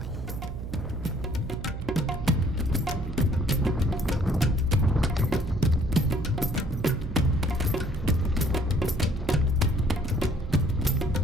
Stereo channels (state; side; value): noise; right; hum, 7 dB below the sound